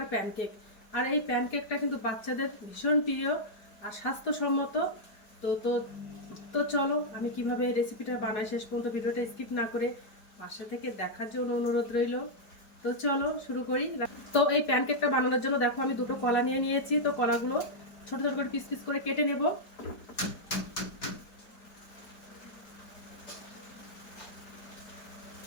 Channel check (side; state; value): right; late; 4.7 ms